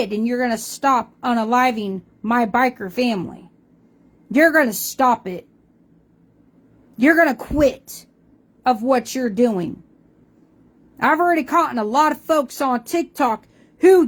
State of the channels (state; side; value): identical; both; correlation 1.00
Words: And you're going to stop unaliving my biker family. You're going to stop it. You're going to quit of what you're doing. I've already caught a lot of folks on TikTok who